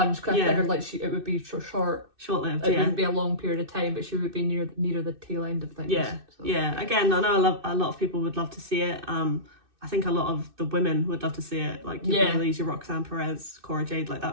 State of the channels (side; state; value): left; late; 2.6 ms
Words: because I figured like it would be short-lived. It wouldn't be a long period of time, but she would be near the tail end of things. Yeah, so, Again, I know a lot of people would love to see it. I think a lot of the women would love to see it, like your Baileys, your Roxanne Perez, Cora Jade, like